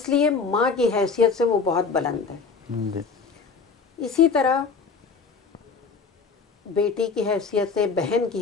لیے ماں کی حیثیت سے وہ بہت بلند ہے۔ اسی طرح بیٹی کی حیثیت سے، بہن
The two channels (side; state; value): right; quieter; 5.0 dB